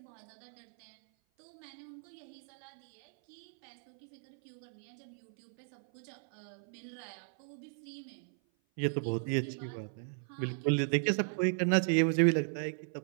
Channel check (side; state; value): left; silent; 54 dB below the other